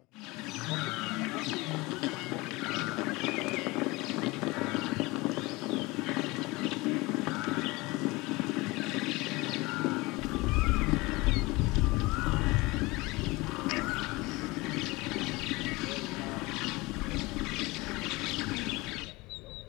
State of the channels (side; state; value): right; quieter; 22.7 dB